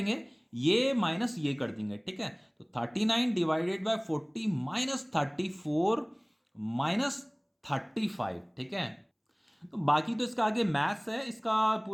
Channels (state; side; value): identical; both; correlation 1.00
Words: ये माइनस ये कर देंगे। ठीक है, तो 39 डिवाइडेड बाय 40 माइनस 34 माइनस 35। ठीक है, तो बाकी तो इसका आगे मैथ्स है, इसका